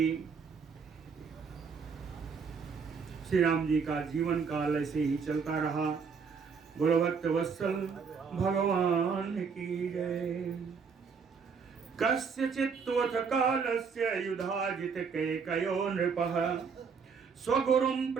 श्री राम जी का जीवन काल ऐसे ही चलता रहा। बोलो भक्त वत्सल भगवान की जय। कस्यचित्त्वथ कालस्य युधाजित कैकयो नृपः स्वगुरुं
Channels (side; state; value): left; quieter; 5.7 dB